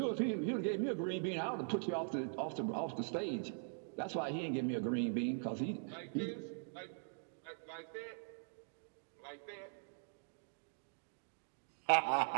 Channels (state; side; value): silent; left; digital silence